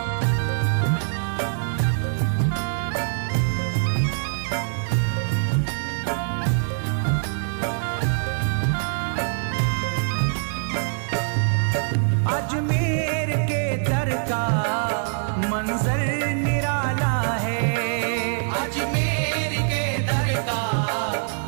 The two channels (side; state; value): left; silent; 63 dB below the other